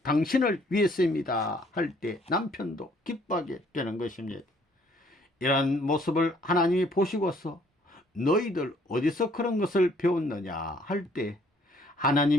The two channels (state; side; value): normal; both; correlation 0.62